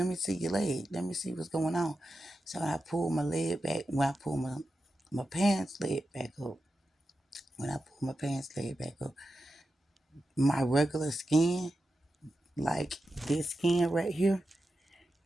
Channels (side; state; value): both; normal; correlation 0.90